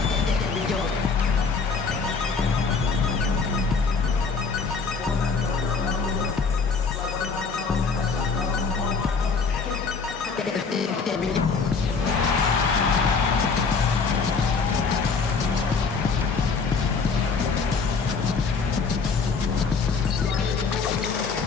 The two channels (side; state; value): right; quieter; 4.9 dB